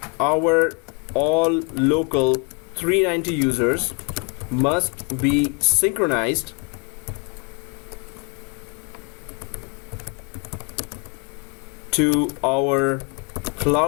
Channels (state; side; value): quieter; right; 34.5 dB